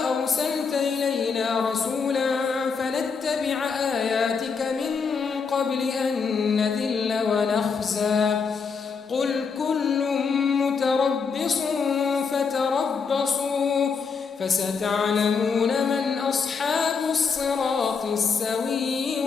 أرسلت إلينا رسولا فنتبع آياتك من قبل أن نذل ونخزى قل كل متربص فتربصوا فستعلمون من أصحاب الصراط السوي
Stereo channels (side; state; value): right; quieter; 5.5 dB